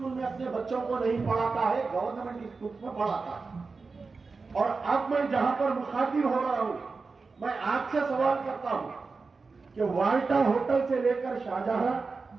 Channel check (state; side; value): quieter; left; 4.3 dB